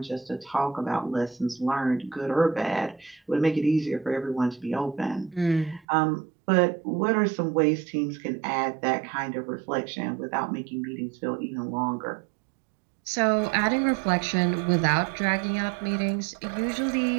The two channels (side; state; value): left; drops out; at 5.8 s